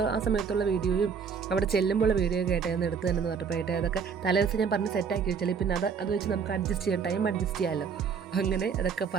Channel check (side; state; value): left; quieter; 6.3 dB